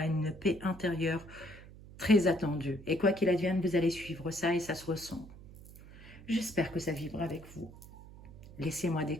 une paix intérieure très attendue. Et quoi qu'il advienne, vous allez suivre ça et ça se ressent. J'espère que ça vibre avec vous. Laissez-moi des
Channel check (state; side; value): noise; right; hum, 18 dB below the sound